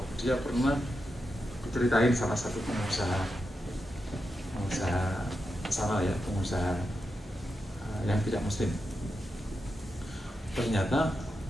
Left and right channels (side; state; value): both; normal; correlation 0.87